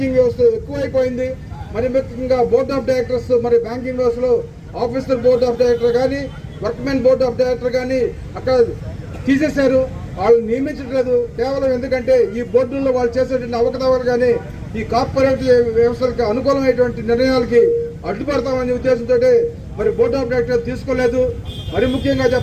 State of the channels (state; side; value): identical; both; correlation 1.00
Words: వ్యవస్థ ఎక్కువైపోయింది. మరి ముఖ్యంగా బోర్డ్ ఆఫ్ డైరెక్టర్స్ మరి బ్యాంకింగ్ వ్యవస్థలో ఆఫీసర్ బోర్డ్ ఆఫ్ డైరెక్టర్ కానీ వర్క్మెన్ బోర్డ్ ఆఫ్ డైరెక్టర్ కానీ అక్కడ తీసేశారు. వాళ్ళు నియమించట్లేదు. కేవలం ఎందుకంటే ఈ బోర్డుల్లో వాళ్ళు చేసేటువంటి అవకతవకలు కానీ ఈ కార్పొరేట్ వ్యవస్థలకు అనుకూలమైనటువంటి నిర్ణయాలకి అడ్డుపడతామనే ఉద్దేశంతో మరి బోర్డ్ ఆఫ్ డైరెక్టర్ తీసుకోలేదు. మరి ముఖ్యంగా